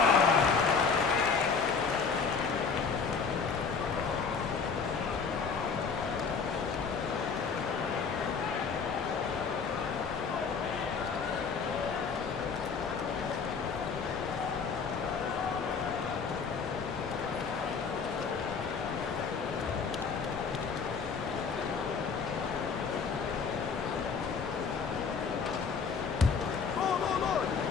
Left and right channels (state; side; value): quieter; right; 5.5 dB